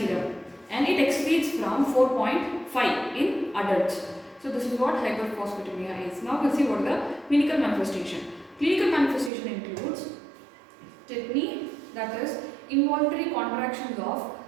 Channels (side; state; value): left; drops out; at 9.3 s